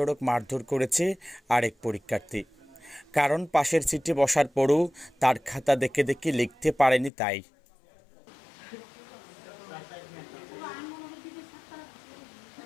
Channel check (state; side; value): drops out; right; at 7.1 s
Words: মারধর করেছে আরেক পরীক্ষার্থী। কারণ পাশের সিটে বসার পরও তার খাতা দেখে দেখে লিখতে পারেনি তাই।